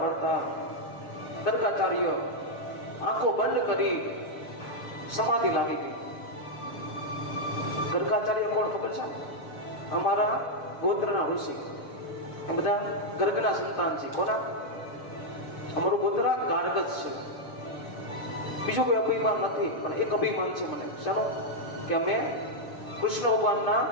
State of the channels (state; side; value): late; right; 6.6 ms